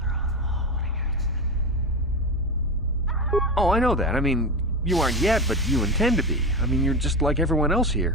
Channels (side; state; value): both; normal; correlation 0.21